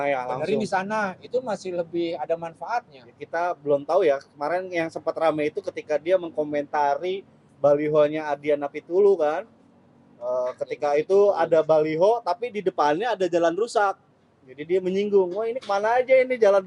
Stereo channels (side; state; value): both; identical; correlation 1.00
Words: ya benerin langsung. di sana, itu masih lebih ada manfaatnya. Kita belum tahu ya, kemarin yang sempat rame itu ketika dia mengkomentari balihonya Adiana Pitulu kan. Ketika itu ada baliho tapi di depannya ada jalan rusak. Jadi dia menyinggung, wah ini kemana aja ini jalan